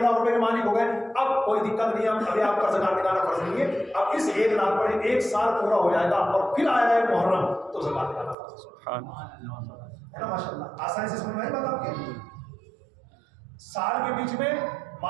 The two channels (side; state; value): left; drops out; at 8.3 s